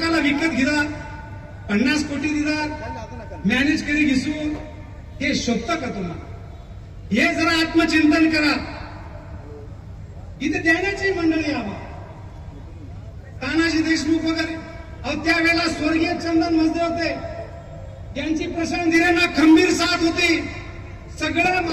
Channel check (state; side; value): identical; both; correlation 1.00